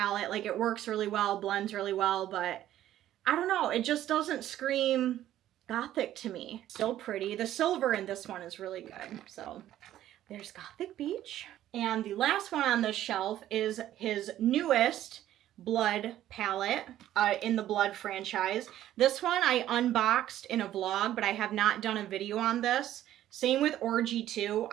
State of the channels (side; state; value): left; quieter; 12.7 dB